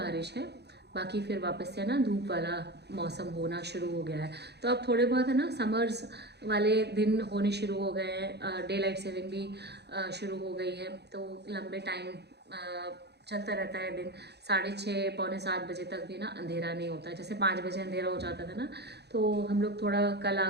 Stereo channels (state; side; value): late; left; 0.48 ms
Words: है, बाकी फिर वापस से ना धूप वाला मौसम होना शुरू हो गया है। तो अब थोड़े बहुत है ना समर्स वाले दिन होने शुरू हो गए हैं, डे लाइट सेविंग भी शुरू हो गई है, तो लंबे टाइम चलता रहता है दिन। 6:30 पौने 7 बजे तक भी ना अंधेरा नहीं होता है। जैसे 5 बजे अंधेरा हो जाता था ना, तो हम लोग थोड़ा कल